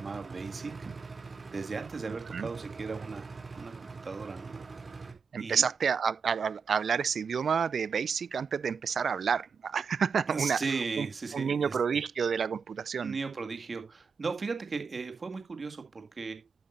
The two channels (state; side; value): quieter; left; 5.8 dB